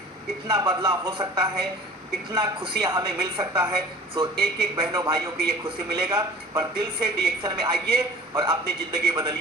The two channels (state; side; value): normal; both; correlation 0.44